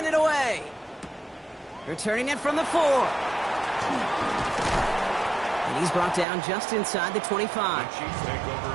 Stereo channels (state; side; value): drops out; left; at 6.2 s